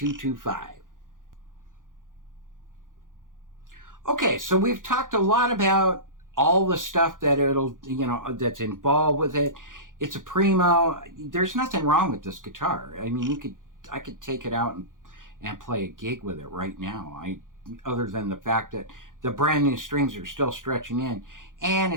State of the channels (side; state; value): left; late; 0.89 ms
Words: Okay, so we've talked a lot about all the stuff that that's involved with it. It's a primo. There's nothing wrong with this guitar. I mean, I could take it out and play a gig with it right now. Other than the fact that the brand new strings are still stretching in, and